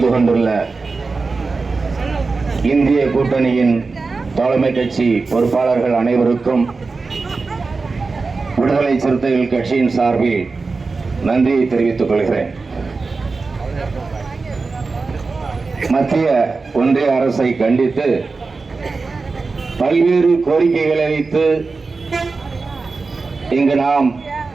கொண்டுள்ள இந்திய கூட்டணியின் தலைமை கட்சி பொறுப்பாளர்கள் அனைவருக்கும் விடுதலை சிறுத்தைகள் கட்சியின் சார்பில் நன்றியை தெரிவித்துக் கொள்கிறேன். மத்திய ஒன்றிய அரசை கண்டித்து பல்வேறு கோரிக்கைகளை வைத்து இங்கு நாம்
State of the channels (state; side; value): quieter; left; 4.1 dB